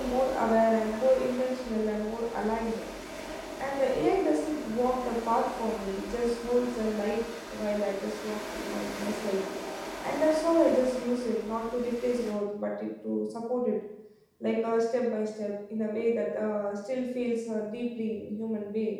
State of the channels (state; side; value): identical; both; correlation 1.00